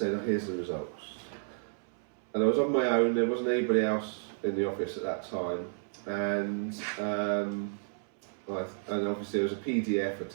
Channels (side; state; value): left; silent; 57 dB below the other